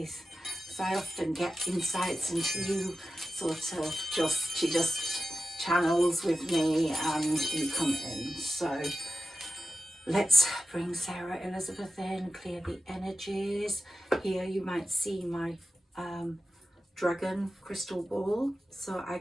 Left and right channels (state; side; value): normal; both; correlation 0.93